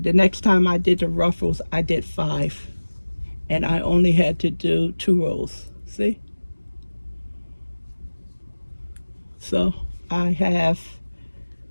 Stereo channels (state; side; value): inverted; both; correlation -1.00